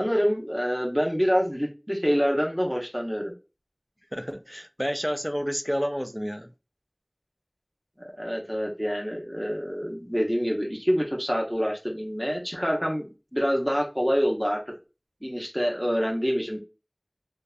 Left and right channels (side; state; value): both; identical; correlation 1.00